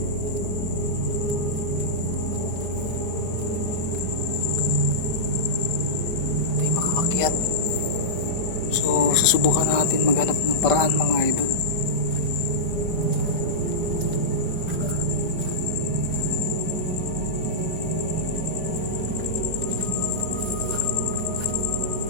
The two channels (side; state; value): right; late; 5.2 ms